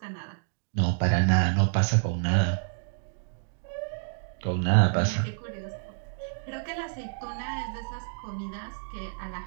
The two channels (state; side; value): silent; left; digital silence